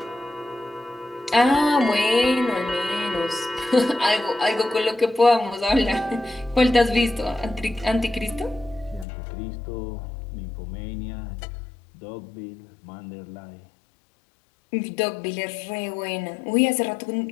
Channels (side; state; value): right; drops out; at 9.1 s